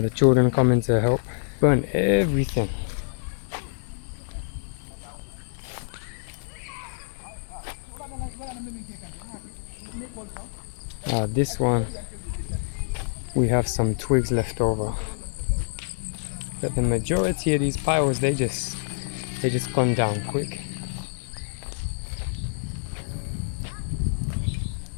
the children come in to help burn everything. This one we have some twigs left over, but the majority of these piles they just gone down quick.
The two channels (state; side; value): silent; right; digital silence